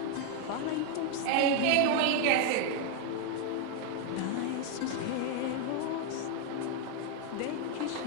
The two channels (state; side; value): different; both; correlation 0.01